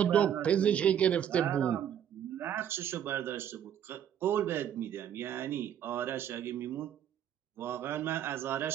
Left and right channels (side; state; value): left; quieter; 9.6 dB